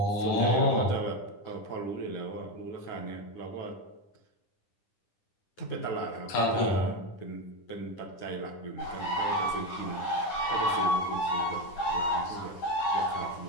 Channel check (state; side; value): late; right; 9.9 ms